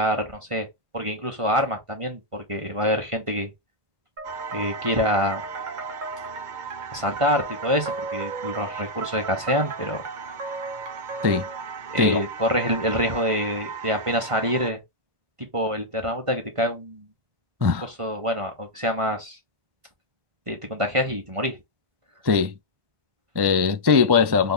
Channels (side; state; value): left; late; 1.5 ms